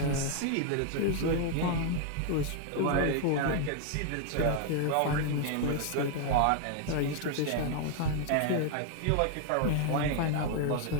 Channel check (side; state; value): both; different; correlation 0.00